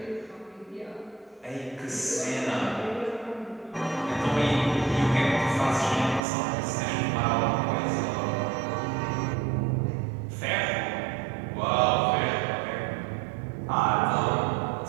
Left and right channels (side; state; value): left; drops out; at 6.2 s